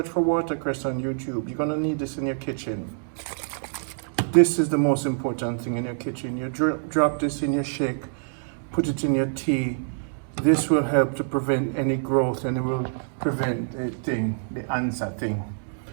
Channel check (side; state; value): left; silent; digital silence